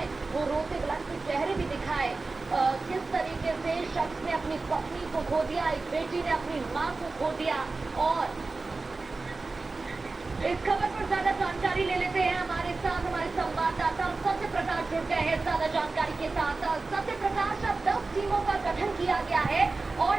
वो रोते बिलखते चेहरे भी दिखाए, किस तरीके से शख्स ने अपनी पत्नी को खो दिया, एक बेटी ने अपनी माँ को खो दिया। और इस खबर पर ज्यादा जानकारी ले लेते हैं, हमारे साथ हमारे संवाददाता सत्य प्रकाश जुड़ गए हैं ज्यादा जानकारी के साथ। सत्य प्रकाश, अब 10 टीमों का गठन किया गया है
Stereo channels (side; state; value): left; quieter; 3.7 dB